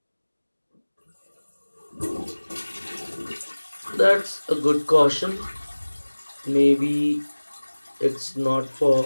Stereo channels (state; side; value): inverted; both; correlation -1.00